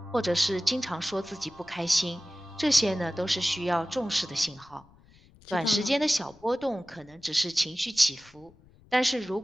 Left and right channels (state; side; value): noise; left; rumble, 27 dB below the sound